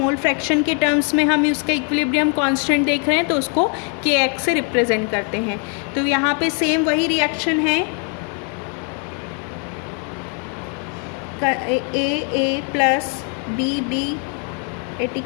फ्रैक्शन के टर्म्स में हम उसका इक्विलिब्रियम कांस्टेंट देख रहे हैं तो उसको के एक्स से रिप्रेजेंट करते हैं। तो यहाँ पे सेम वही रिएक्शन है, A plus B at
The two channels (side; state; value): right; quieter; 40.0 dB